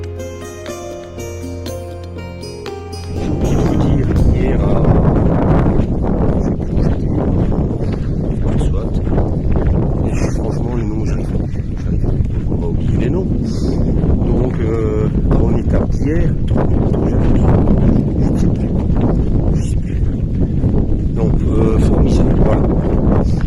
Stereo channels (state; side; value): identical; both; correlation 1.00